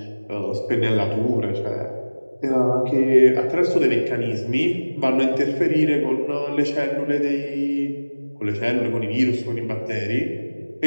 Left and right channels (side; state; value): both; inverted; correlation -1.00